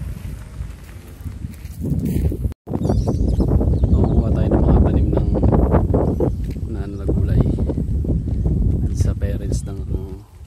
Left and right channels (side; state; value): both; identical; correlation 1.00